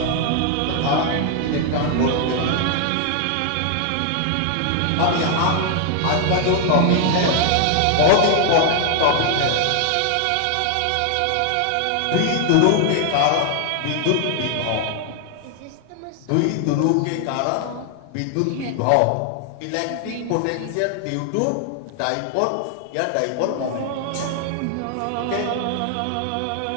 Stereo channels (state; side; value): different; both; correlation 0.00